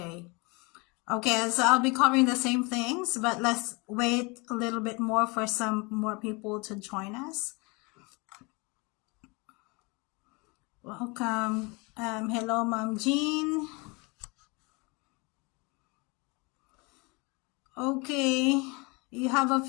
Okay, so I'll be covering the same things, but let's wait a little bit more for some more people to join us. Welcome. Hello, Mom Jean. Okay, you have a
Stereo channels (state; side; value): quieter; right; 28.0 dB